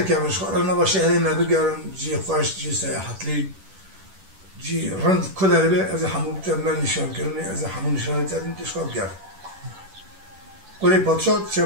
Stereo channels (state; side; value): late; left; 10 ms